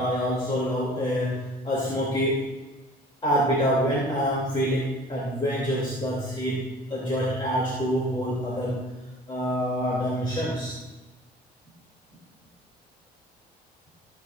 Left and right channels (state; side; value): normal; both; correlation 0.46